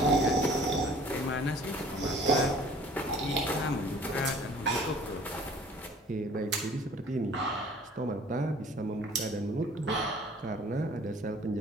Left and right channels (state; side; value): normal; both; correlation 0.51